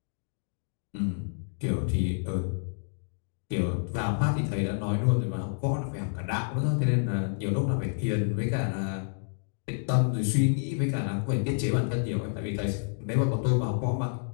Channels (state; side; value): silent; right; digital silence